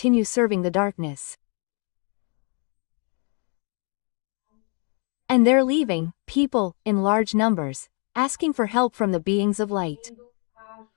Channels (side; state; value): right; quieter; 37.5 dB